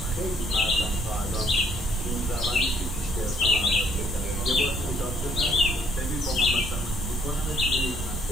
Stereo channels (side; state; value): right; noise; rumble, 5 dB below the sound